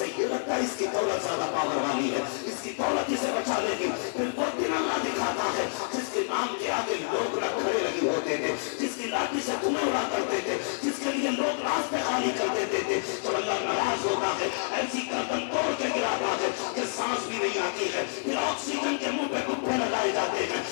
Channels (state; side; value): silent; right; 56 dB below the other